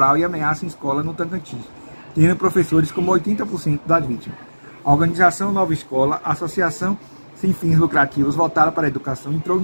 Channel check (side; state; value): both; inverted; correlation -1.00